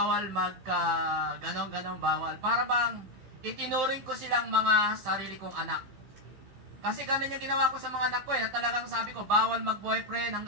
ganon-ganon bawal, para bang itinuring ko silang mga sarili kong anak. Kasi ganun yung ginawa ko sa mga anak ko na talagang sabi ko, bawal mag-boyfriend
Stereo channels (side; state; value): left; late; 16 ms